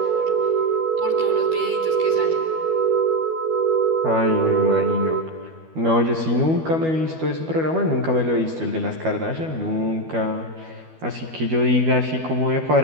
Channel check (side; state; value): left; late; 12 ms